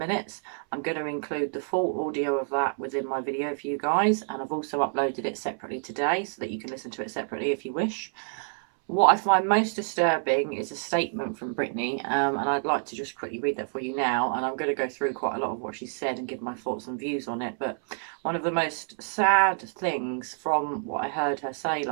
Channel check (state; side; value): silent; left; 59 dB below the other